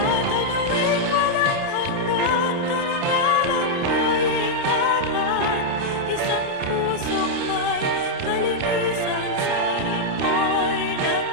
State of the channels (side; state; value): left; late; 29 ms